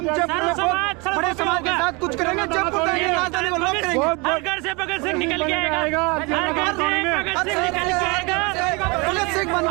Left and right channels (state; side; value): quieter; left; 28.0 dB